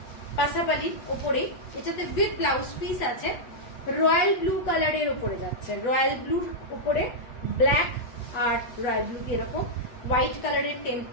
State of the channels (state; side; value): late; right; 8.1 ms